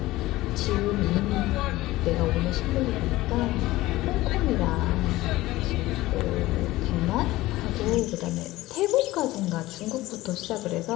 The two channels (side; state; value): right; quieter; 17.8 dB